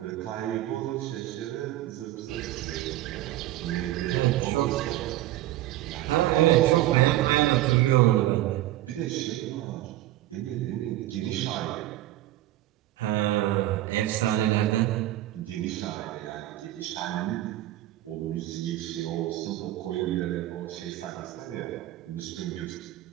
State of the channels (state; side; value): quieter; left; 15.0 dB